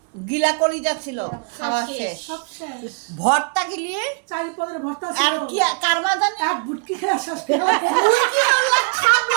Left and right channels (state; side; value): quieter; left; 38.7 dB